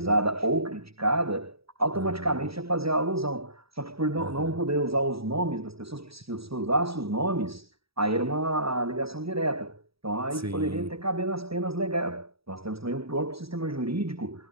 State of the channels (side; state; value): left; late; 0.77 ms